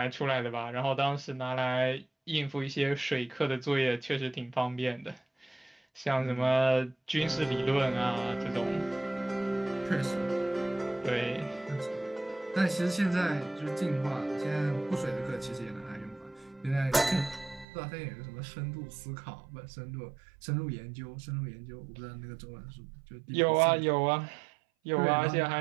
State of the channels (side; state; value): left; drops out; at 17.7 s